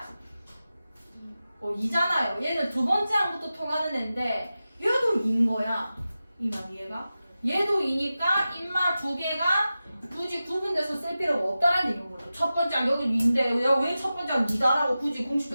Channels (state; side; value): inverted; both; correlation -0.94